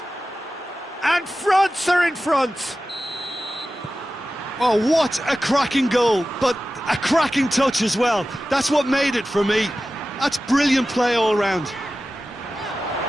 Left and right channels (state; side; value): normal; both; correlation 0.95